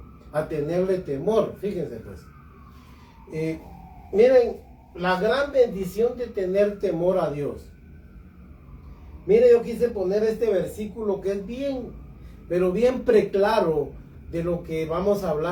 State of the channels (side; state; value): both; identical; correlation 1.00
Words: a tenerle temor. Fíjense pues. Miren, la gran bendición de tener temor a Dios. Mire, yo quise poner este versículo que es bien, pero bien preclaro de lo que vamos a